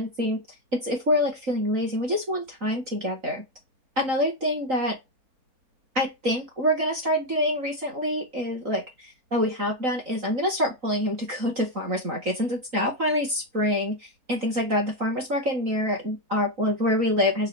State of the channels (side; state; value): left; late; 3.9 ms